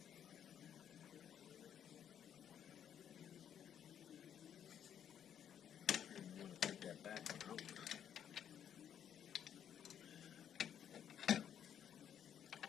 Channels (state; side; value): quieter; right; 9.2 dB